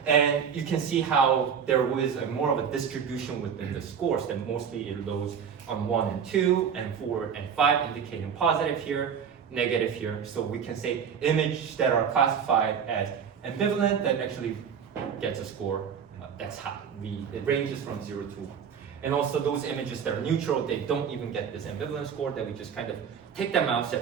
And you can see how there was more of a distribution within the scores, that mostly it loads on 1 and 2, and 4 and 5, indicating positive here, negative here. So we can say images that are classified as ambivalent that actually gets a score that's high. It ranges from 0 to 1. And also those images that are neutral, they don't even get this ambivalence score, that we just kind of take them out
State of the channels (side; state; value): left; quieter; 7.4 dB